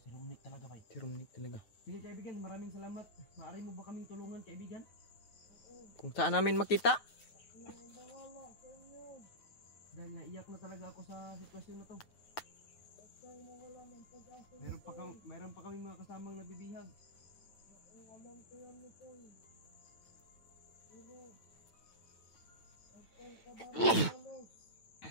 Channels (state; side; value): late; right; 9.2 ms